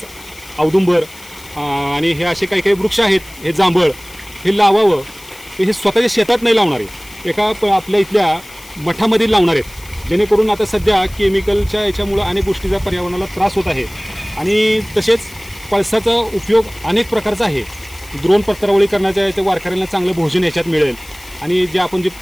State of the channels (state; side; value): noise; left; hiss, 20 dB below the sound